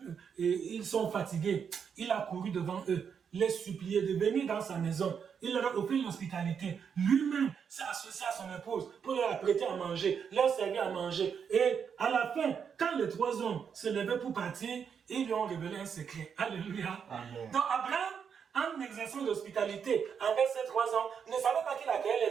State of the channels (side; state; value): left; quieter; 7.0 dB